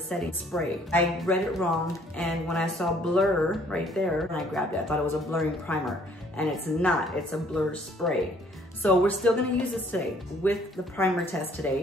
spray. I read it wrong, and when I saw blur right there, and I grabbed it, I thought it was a blurring primer. And it's not, it's a blur spray. So we're still gonna use this today with the primer test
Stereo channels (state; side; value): normal; both; correlation 0.60